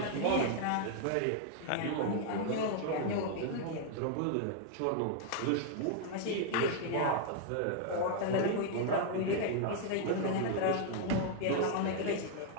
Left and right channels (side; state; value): both; different; correlation 0.00